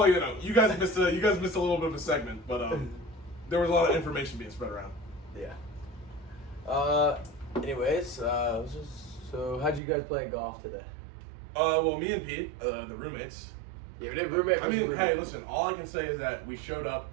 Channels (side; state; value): left; drops out; at 9.8 s